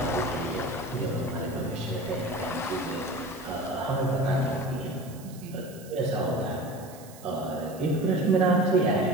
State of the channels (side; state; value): right; noise; hiss, 20 dB below the sound